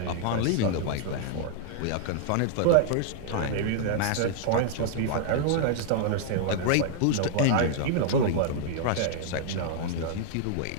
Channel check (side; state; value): both; different; correlation -0.01